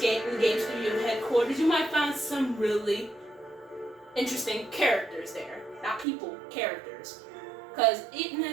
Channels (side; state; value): left; drops out; at 6.1 s